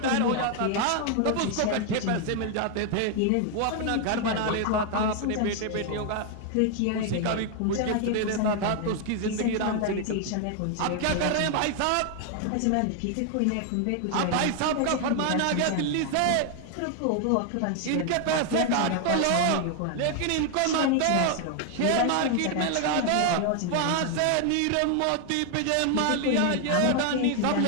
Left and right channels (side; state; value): both; different; correlation 0.00